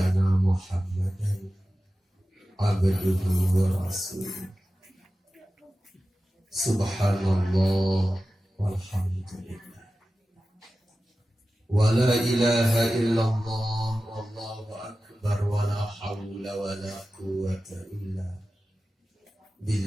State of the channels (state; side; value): normal; both; correlation 0.95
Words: Muhammadan abduhu wa rasuluh. Subhanallah walhamdulillah wa la ilaha illallah wallahu akbar wa la hawla wa la quwwata illa